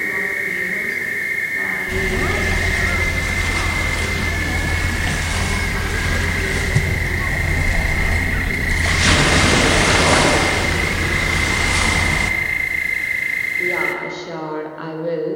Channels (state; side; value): identical; both; correlation 1.00